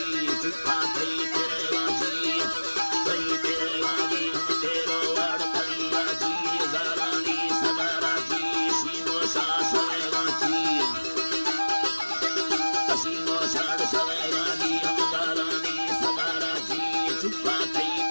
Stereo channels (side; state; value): both; inverted; correlation -1.00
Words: चुपा थई तेरा जी हम तेरो वाड़ कलिया जी जारानी सदारा जी सीनो सा सवेगा जी सीनो साड़ सवेगा जी हम जारानी सदारा जी चुपा थई